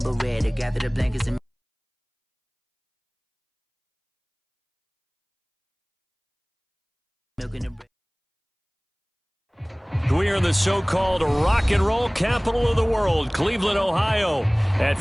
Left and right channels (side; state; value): both; identical; correlation 1.00